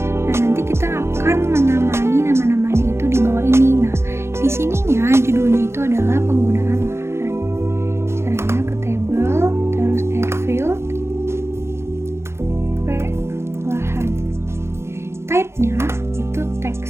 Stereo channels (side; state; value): left; late; 0.13 ms